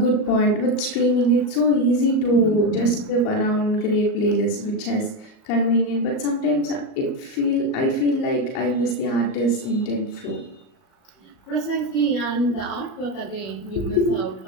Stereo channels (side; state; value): right; late; 38 ms